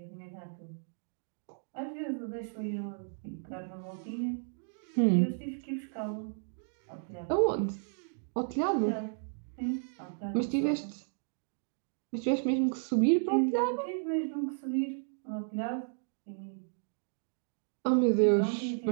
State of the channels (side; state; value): left; silent; digital silence